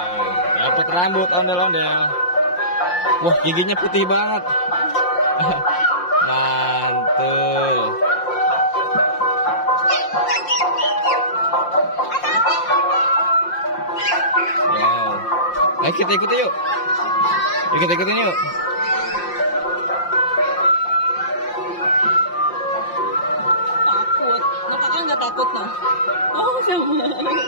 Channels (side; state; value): right; late; 5.7 ms